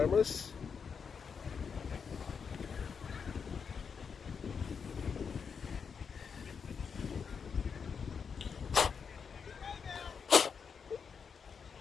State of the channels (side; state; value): right; quieter; 6.2 dB